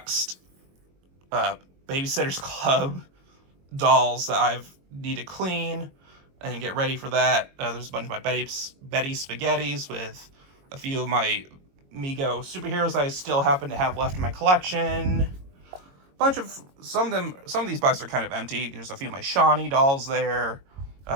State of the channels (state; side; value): late; left; 22 ms